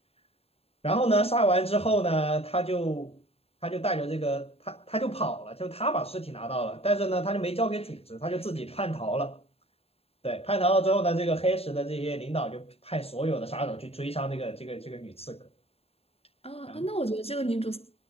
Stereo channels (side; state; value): right; late; 0.29 ms